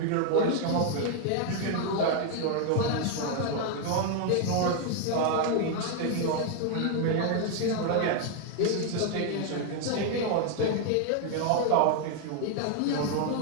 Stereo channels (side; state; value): both; different; correlation 0.00